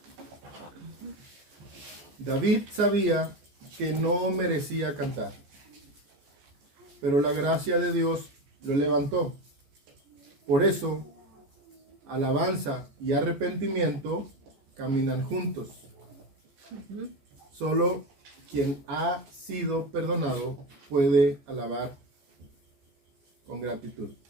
David sabía que no merecía cantar, pero la gracia de Dios lo levantó. Por eso, alabanza y arrepentimiento caminan juntos. Solo quien ha sido perdonado puede alabar con gratitud.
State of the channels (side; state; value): left; late; 14 ms